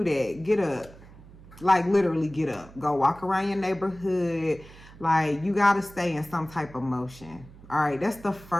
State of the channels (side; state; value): right; noise; hum, 20 dB below the sound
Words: that? Get up. Like, literally get up, go walk around your neighborhood. Like, you got to stay in some type of motion. All right, that's the